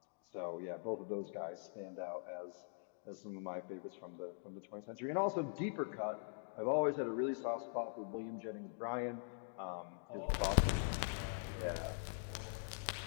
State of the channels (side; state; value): right; silent; digital silence